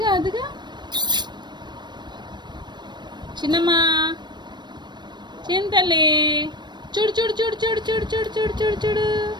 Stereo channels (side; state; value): left; late; 0.22 ms